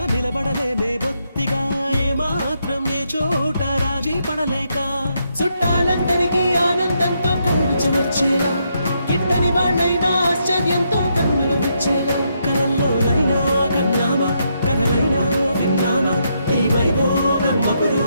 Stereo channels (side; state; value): both; inverted; correlation -0.78